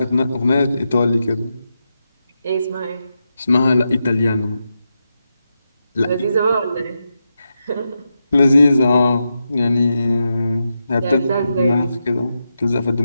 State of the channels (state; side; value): inverted; both; correlation -0.87